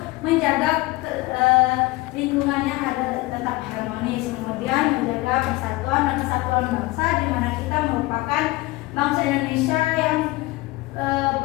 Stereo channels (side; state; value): right; quieter; 20.6 dB